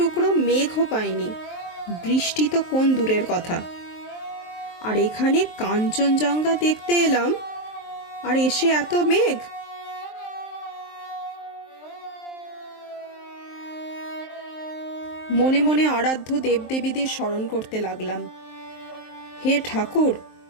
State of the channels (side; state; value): right; late; 23 ms